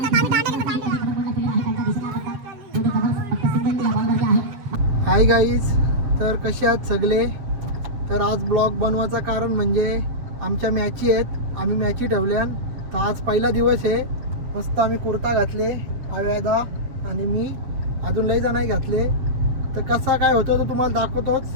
आम्ही दांडे घेतो दांडे. हाय गाईज, तर कसे आहात सगळे. तर आज ब्लॉग बनवायचं कारण म्हणजे आमच्या मॅची आहेत, आम्ही मॅची ठेवल्यान. तर आज पहिला दिवस आहे. मस्त आम्ही कुर्ता घातले आव्यादा आणि मी अजून लई जणांनी घातले. तर कसा काय होतो तो तुम्हाला दाखवतोच.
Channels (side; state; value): left; late; 7.9 ms